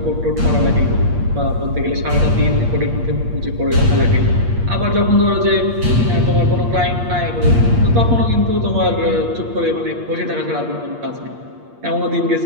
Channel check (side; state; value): left; late; 8.5 ms